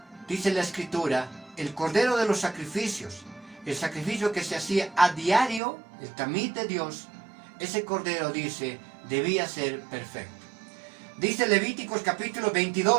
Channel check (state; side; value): drops out; left; at 5.6 s